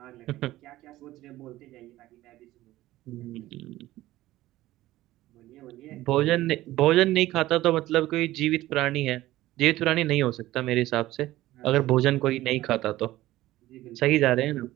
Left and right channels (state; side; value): quieter; left; 16.1 dB